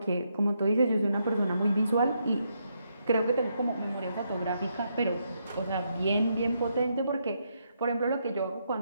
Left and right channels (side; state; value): both; inverted; correlation -0.79